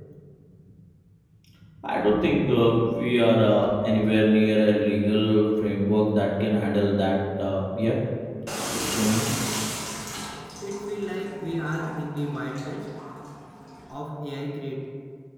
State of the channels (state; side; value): identical; both; correlation 1.00